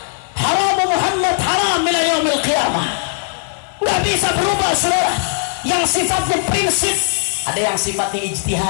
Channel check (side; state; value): right; silent; 68 dB below the other